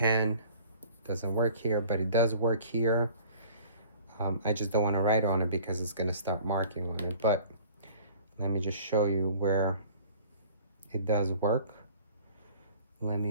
doesn't work here, but it does work here. I just don't want to write on it because it's going to start marking on it. But let me just show you where it does work. Let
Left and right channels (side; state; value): both; inverted; correlation -0.49